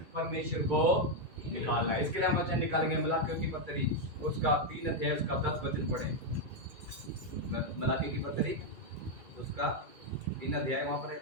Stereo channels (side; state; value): left; late; 2.3 ms